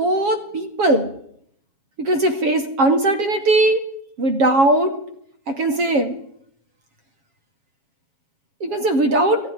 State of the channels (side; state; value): left; late; 7.3 ms